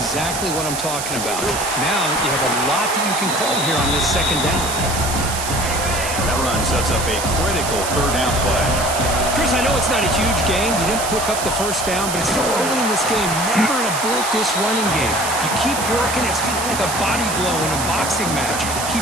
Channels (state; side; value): noise; right; hiss, 5 dB below the sound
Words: what I'm talking about. Now you have a lot that you can call here on this 2nd down. That run sets up a critical 3rd down play. Chris, I know it's not a huge game. You didn't pick up the 1st down, but it's so early in this game. Never abort this running game. You keep working. It's kind of like a body blow in a boxing match.